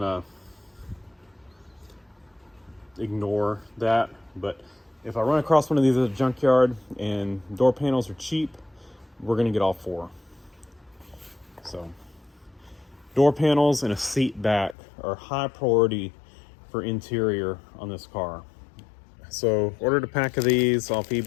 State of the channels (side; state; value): right; drops out; at 14.8 s